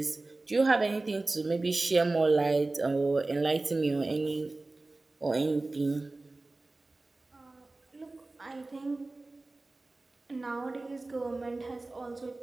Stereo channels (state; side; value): quieter; left; 3.1 dB